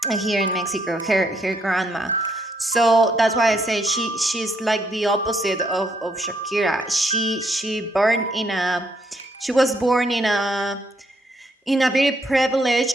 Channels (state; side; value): normal; both; correlation 0.73